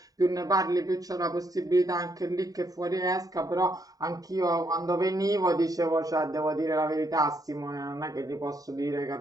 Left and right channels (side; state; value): left; late; 0.18 ms